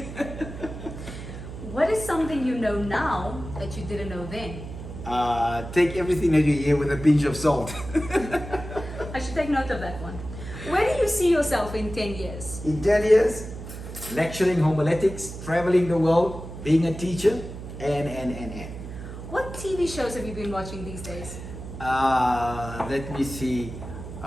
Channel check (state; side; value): noise; right; hum, 11 dB below the sound